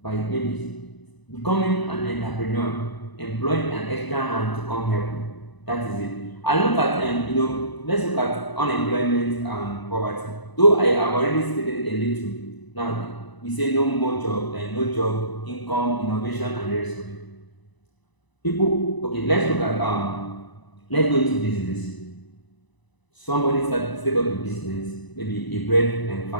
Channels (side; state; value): right; late; 1.0 ms